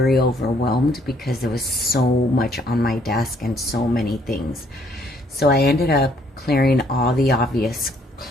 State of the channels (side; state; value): both; normal; correlation 0.66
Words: overwhelmed because there was so much on my desk and so many things. So I ended up clearing all the obvious